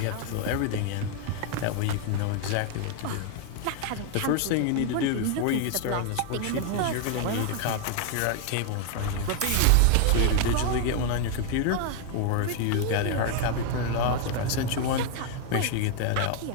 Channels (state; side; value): different; both; correlation 0.00